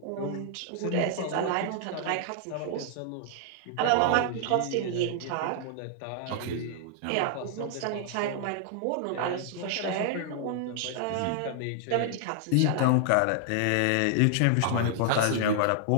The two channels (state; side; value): different; both; correlation -0.01